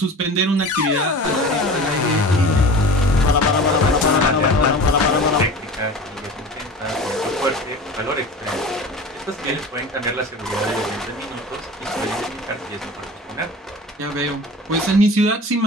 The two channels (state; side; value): normal; both; correlation 0.37